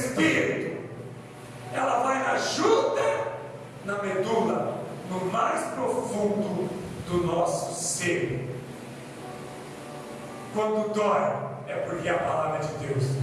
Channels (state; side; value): identical; both; correlation 1.00